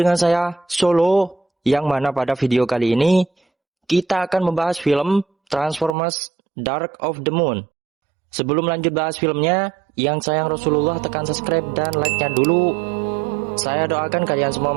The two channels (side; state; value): left; drops out; at 6.0 s